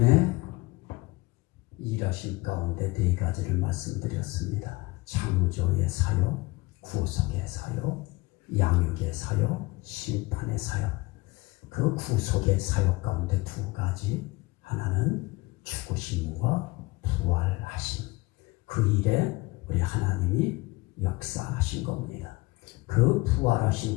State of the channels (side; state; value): right; quieter; 22.4 dB